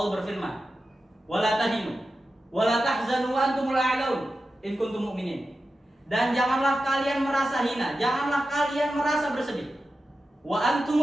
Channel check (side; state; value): both; normal; correlation 0.92